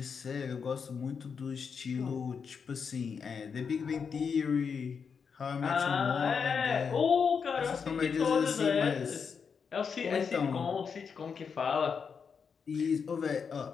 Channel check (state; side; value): quieter; right; 6.1 dB